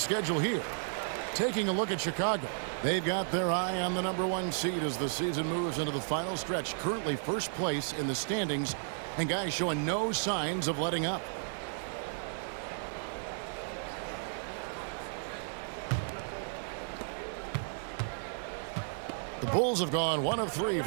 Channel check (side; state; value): left; silent; 55 dB below the other